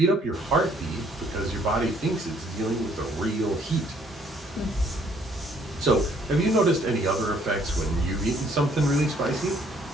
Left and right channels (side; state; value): both; normal; correlation 0.64